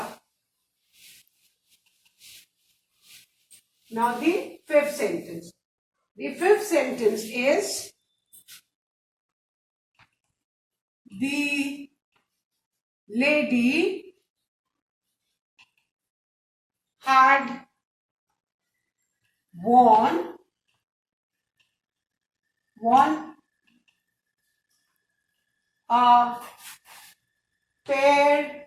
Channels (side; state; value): both; identical; correlation 1.00